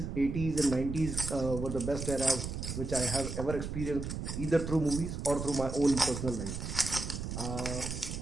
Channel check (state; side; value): noise; right; rumble, 5 dB below the sound